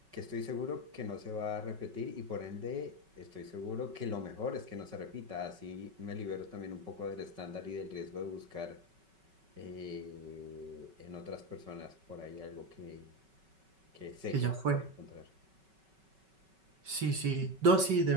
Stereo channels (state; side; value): late; left; 5.3 ms